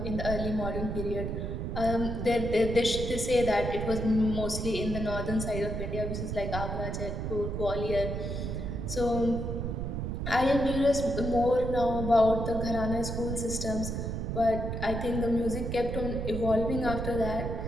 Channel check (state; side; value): noise; right; rumble, 3 dB below the sound